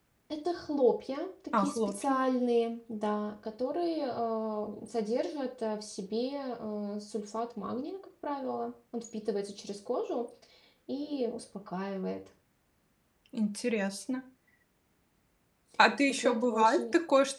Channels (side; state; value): both; identical; correlation 1.00